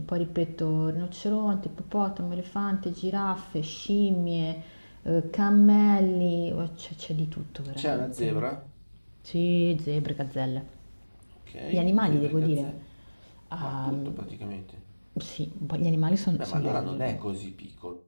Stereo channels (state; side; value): inverted; both; correlation -1.00